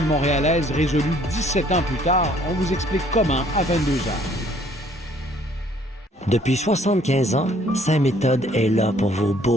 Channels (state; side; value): normal; both; correlation 0.60